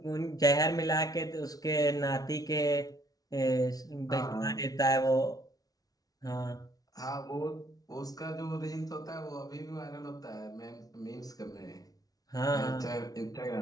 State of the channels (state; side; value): late; right; 0.18 ms